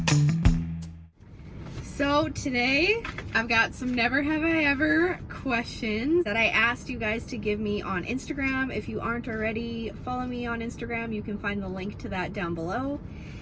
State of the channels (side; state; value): both; identical; correlation 1.00